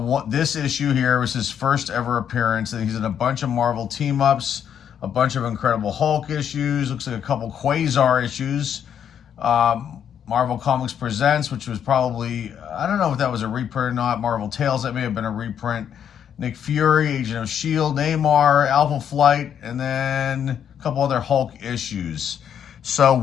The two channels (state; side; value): quieter; right; 8.7 dB